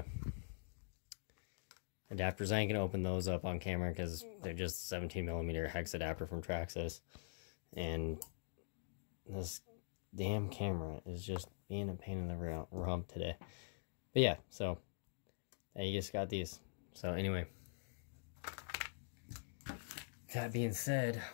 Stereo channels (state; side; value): silent; right; digital silence